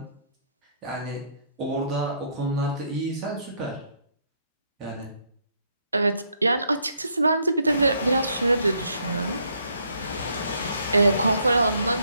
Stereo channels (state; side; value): inverted; both; correlation -0.70